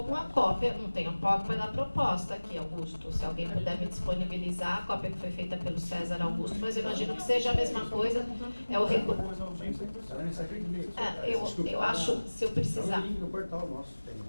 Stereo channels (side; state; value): both; inverted; correlation -1.00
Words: com a cópia, não tenho a cópia da proposta aqui, Augusto. Se alguém puder me disponibilizar, a cópia que foi feita pelo César Augusto, mas eu imagino que seja a mesma coisa. É o eu acho, se eu precisar...